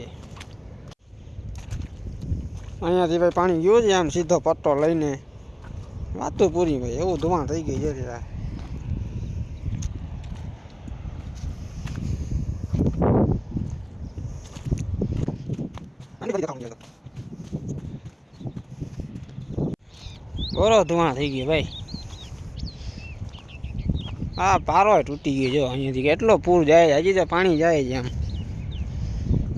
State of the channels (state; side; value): identical; both; correlation 1.00